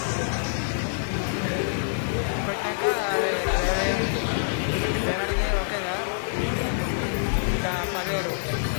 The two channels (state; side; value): silent; right; digital silence